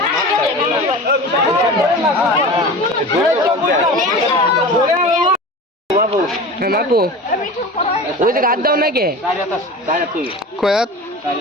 বাপু ওই যে গাছ দাও নাকি কয়াত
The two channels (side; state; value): both; normal; correlation 0.34